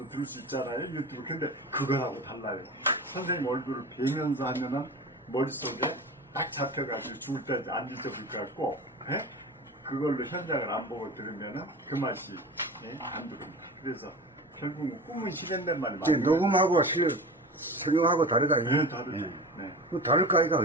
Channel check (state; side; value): normal; both; correlation 0.32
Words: 들을 수 있잖아요, 유튜브. 근데 그거하고 달라요. 선생님 얼굴을 뵈면서 하면은 머릿속에 딱 잡혀가지고 죽을 때까지 안 잊어볼 것 같고, 그걸로 현장을 안 보고 들으면은 그 맛이 안 들립니다. 그래서 결국은 꿈은 실현된 말이 많아요. 녹음하고 설명하고 다르다. 네, 다르죠. 네. 그 다를까, 이거?